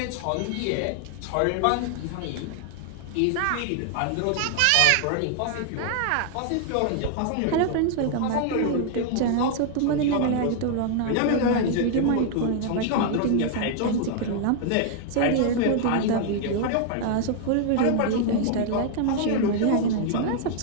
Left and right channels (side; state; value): both; different; correlation 0.00